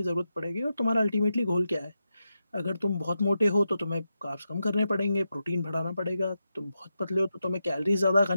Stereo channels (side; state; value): both; inverted; correlation -0.88